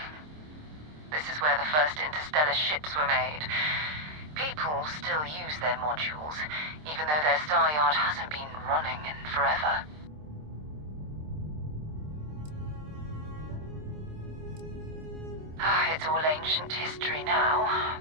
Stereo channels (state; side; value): late; left; 26 ms